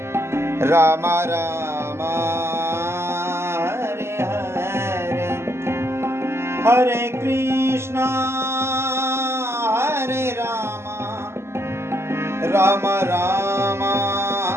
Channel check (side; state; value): left; late; 0.12 ms